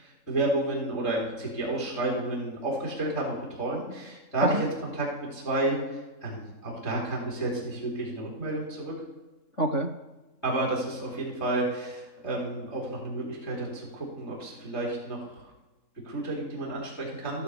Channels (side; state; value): right; late; 3.7 ms